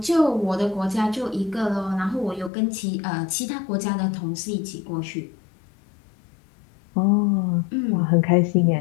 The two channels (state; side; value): drops out; right; at 2.5 s